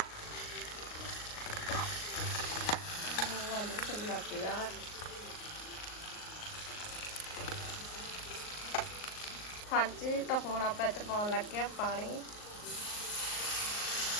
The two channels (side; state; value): right; late; 38 ms